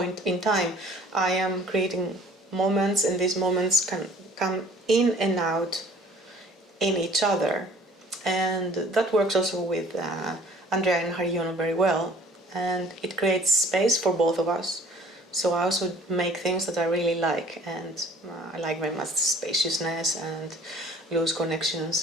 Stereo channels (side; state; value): both; normal; correlation 0.52